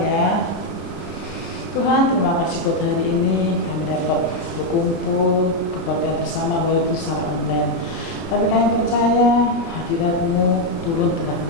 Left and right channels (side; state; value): right; late; 29 ms